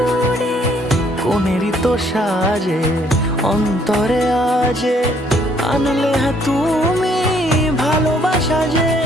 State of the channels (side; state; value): both; normal; correlation 0.65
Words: কোনেরই তো সাজে অন্তরে আজে আনলে তুমি ভালোবাসা যে।